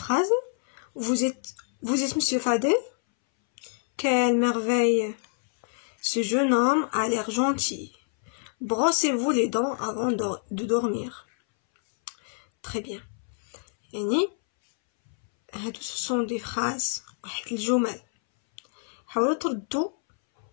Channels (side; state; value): right; silent; 60 dB below the other